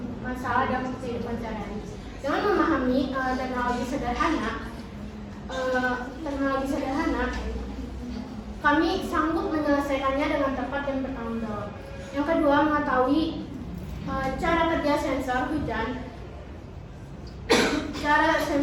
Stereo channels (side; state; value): both; identical; correlation 1.00